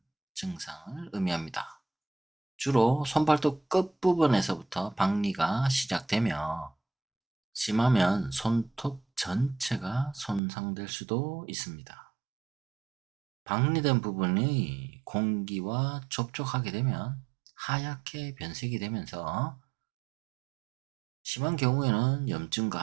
증상을 의미합니다. 주로 손발톱 끝부분에서부터 박리가 시작되며 심하면 손톱 전체가 손상될 수도 있습니다. 박리된 부분이 공기와 접촉하게 되면 하얗게 변색이 되면서 심한 경우에는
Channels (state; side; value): drops out; left; at 10.4 s